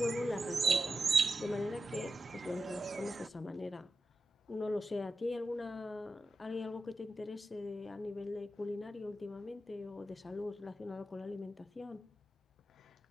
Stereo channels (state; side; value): normal; both; correlation 0.90